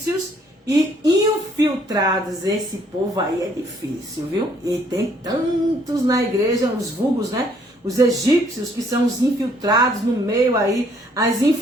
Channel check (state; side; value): normal; both; correlation 0.65